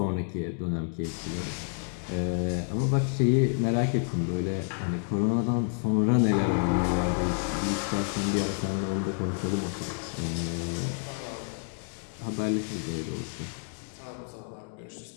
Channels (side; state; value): right; silent; 56 dB below the other